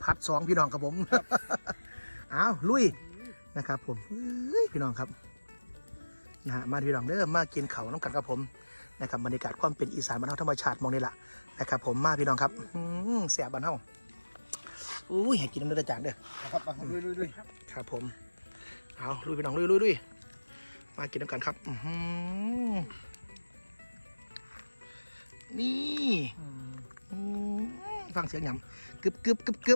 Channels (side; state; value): both; inverted; correlation -1.00